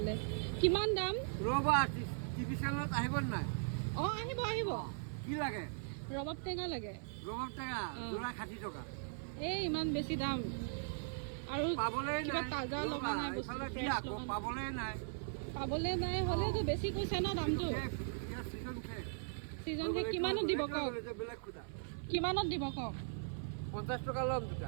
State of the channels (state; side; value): silent; left; 52 dB below the other